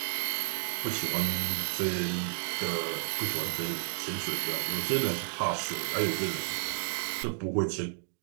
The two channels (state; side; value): silent; left; digital silence